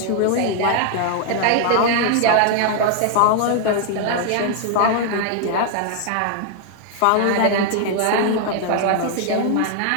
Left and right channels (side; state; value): both; different; correlation 0.00